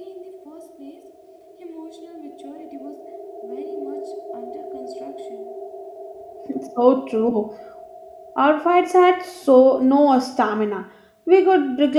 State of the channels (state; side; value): identical; both; correlation 1.00